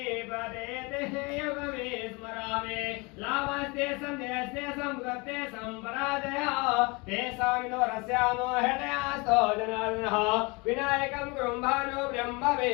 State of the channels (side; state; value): right; quieter; 27.5 dB